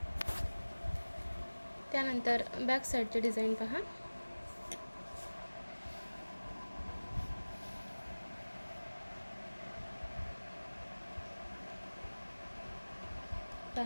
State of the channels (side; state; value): both; inverted; correlation -1.00